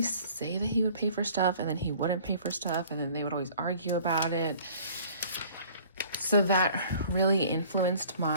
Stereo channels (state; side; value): inverted; both; correlation -0.51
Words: say that he would pay for stuff, and then he wouldn't pay for stuff, and then they would always argue about it. So that really influenced